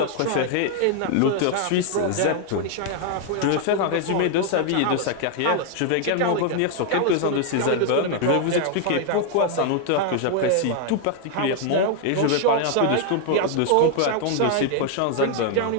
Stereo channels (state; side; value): different; both; correlation 0.00